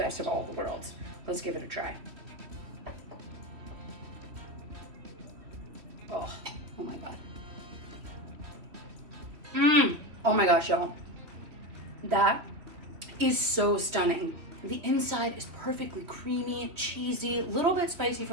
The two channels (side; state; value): left; late; 3.1 ms